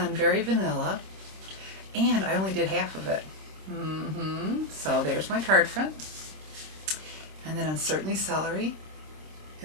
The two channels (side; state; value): left; late; 26 ms